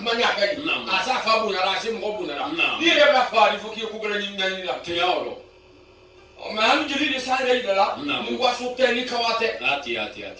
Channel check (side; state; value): both; identical; correlation 1.00